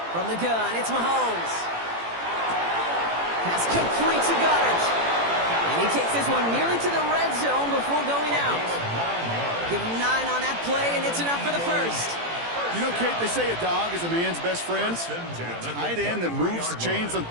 From the gun, it's Mahomes. Pass complete to Goddard. And he takes this one nearly to the red zone before going out. Give him 9 on that play, and it's enough for the first. You know, Kate, they say a dog is a man's best friend. A tight end that moves the chains on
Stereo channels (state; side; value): late; left; 18 ms